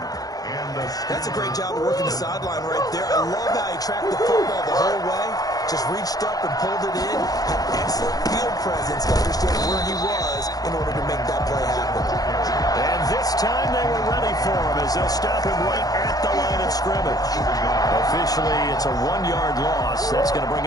That's a great job of working the sideline right there. I love how he tracked the football the whole way. Just reached up and pulled it in. Had excellent field presence to understand where he was in order to make that play happen. And this time they were ready for him as they'll stop him right at the line of scrimmage. Officially, it's a 1-yard loss. That's going to bring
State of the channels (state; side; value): late; right; 0.18 ms